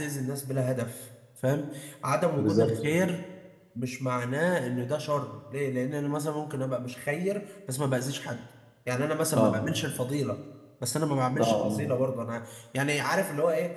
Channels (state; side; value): identical; both; correlation 1.00